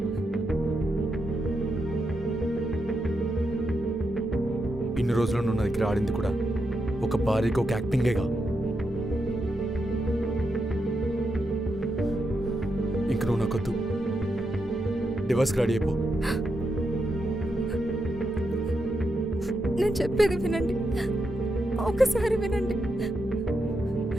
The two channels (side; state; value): both; normal; correlation 0.84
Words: ఇన్ని రోజులు నువ్వు నా దగ్గర ఆడింది కూడా ఒక భార్యకి ఒక యాక్టింగేగా. ఇంక నువ్వు నాకొద్దు, డివోర్స్కి రెడీ అయిపో. నేను చెప్పేది వినండి, ఒకసారి వినండి.